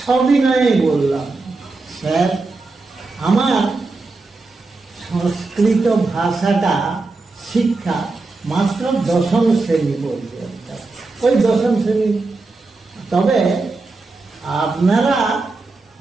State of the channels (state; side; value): quieter; left; 3.6 dB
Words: সবিনয়ে বললাম, স্যার আমার সংস্কৃত ভাষাটা শিক্ষা মাত্র দশম শ্রেণী পর্যন্ত, ওই দশম শ্রেণী। তবে আপনারা